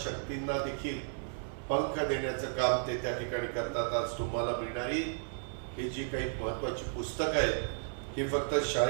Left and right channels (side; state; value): left; silent; 55 dB below the other